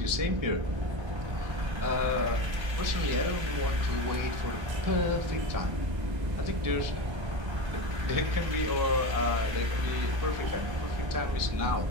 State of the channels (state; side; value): late; left; 1.3 ms